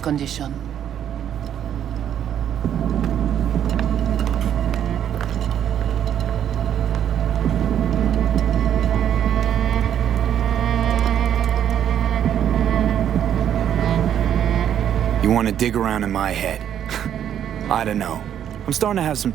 You want to dig around in my head? I don't know. I'm starting to have some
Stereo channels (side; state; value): left; quieter; 9.8 dB